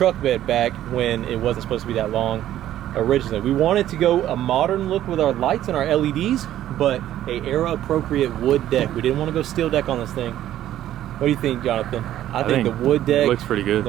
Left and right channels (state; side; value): quieter; left; 12.5 dB